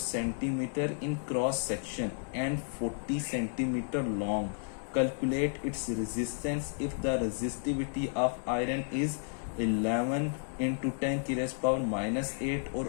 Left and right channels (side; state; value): right; silent; digital silence